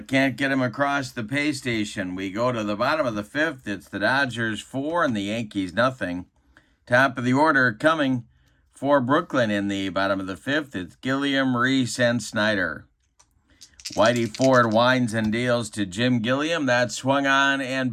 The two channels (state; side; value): identical; both; correlation 1.00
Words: can't get him across the pay station. We go to the bottom of the 5th. It's the Dodgers 4 and the Yankees nothing. Top of the order coming for Brooklyn in the bottom of the 5th. It's Gilliam, Reese, and Snyder. Whitey Ford winds and deals to Jim Gilliam. That swung on